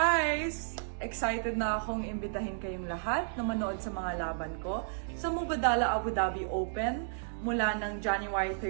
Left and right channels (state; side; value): silent; left; 56 dB below the other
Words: Excited na akong imbitahin kayong lahat na manood sa mga laban ko sa Mubadala Abu Dhabi Open mula ng January